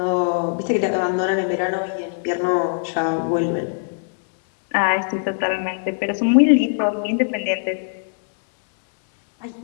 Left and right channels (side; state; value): right; silent; digital silence